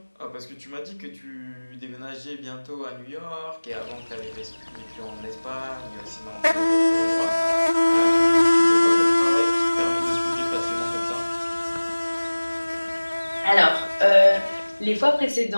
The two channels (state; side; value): inverted; both; correlation -1.00